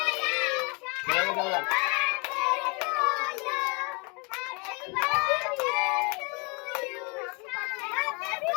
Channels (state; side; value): quieter; right; 31.6 dB